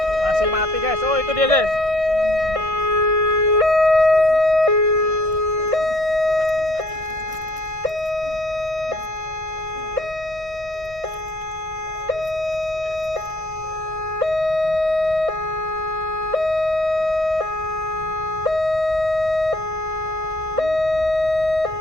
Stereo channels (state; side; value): late; left; 1.6 ms